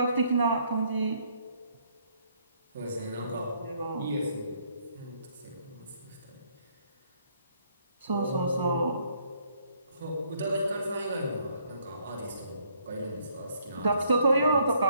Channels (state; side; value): inverted; both; correlation -0.68